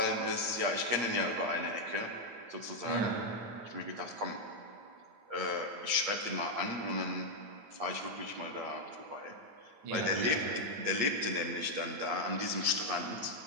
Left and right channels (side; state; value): left; late; 8.6 ms